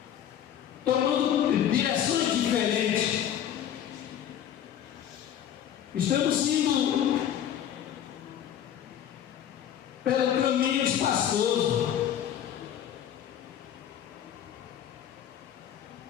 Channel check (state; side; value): quieter; right; 10.1 dB